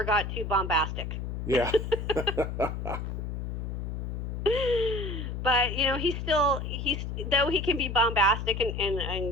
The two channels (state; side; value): noise; left; hum, 4 dB below the sound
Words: got too bombastic. Yeah. But he's though he can be bombastic